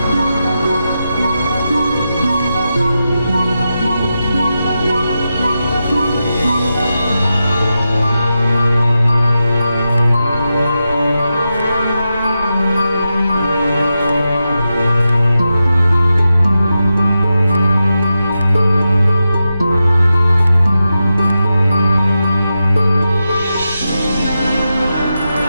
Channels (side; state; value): both; inverted; correlation -0.90